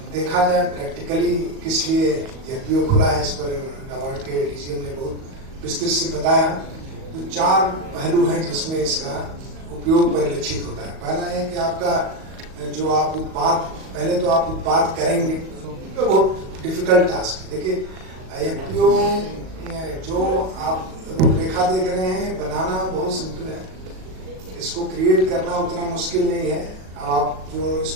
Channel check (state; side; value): late; left; 37 ms